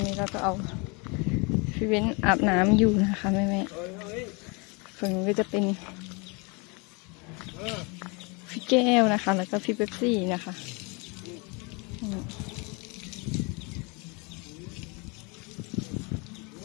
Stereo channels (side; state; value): right; quieter; 30.1 dB